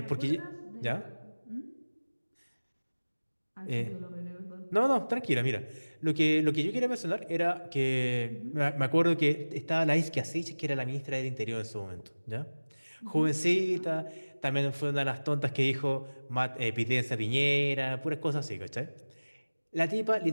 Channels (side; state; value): both; inverted; correlation -1.00